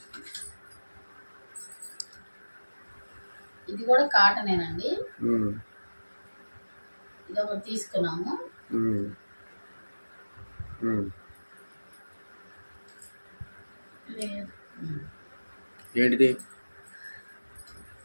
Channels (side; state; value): both; inverted; correlation -1.00